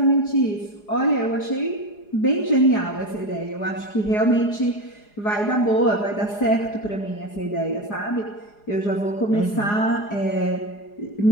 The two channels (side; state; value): right; late; 4.8 ms